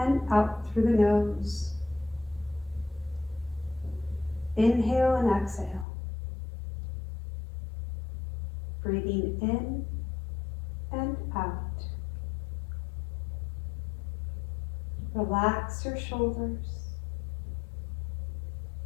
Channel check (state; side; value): drops out; right; at 5.9 s